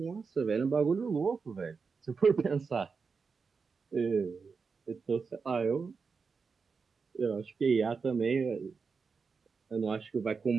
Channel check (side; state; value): left; quieter; 5.1 dB